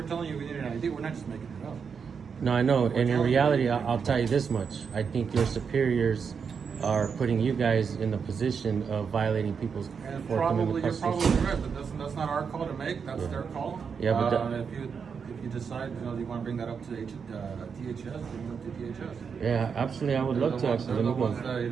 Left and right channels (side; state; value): left; quieter; 6.2 dB